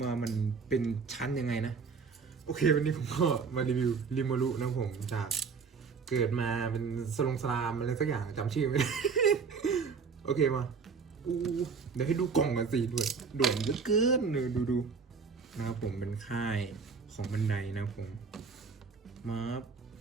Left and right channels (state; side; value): quieter; left; 5.4 dB